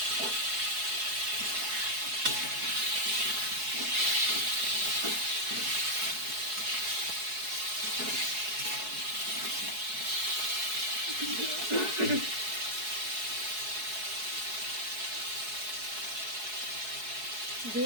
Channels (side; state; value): left; late; 4.7 ms